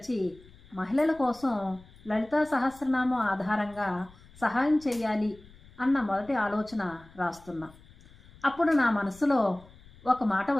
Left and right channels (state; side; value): noise; left; rumble, 24 dB below the sound